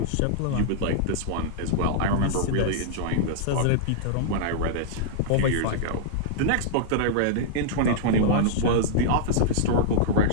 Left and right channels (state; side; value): different; both; correlation -0.01